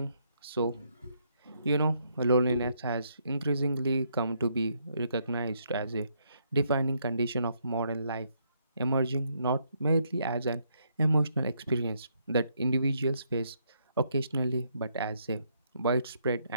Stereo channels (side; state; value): both; inverted; correlation -0.74